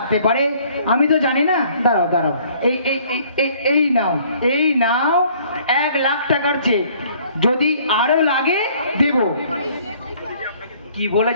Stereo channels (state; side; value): inverted; both; correlation -0.58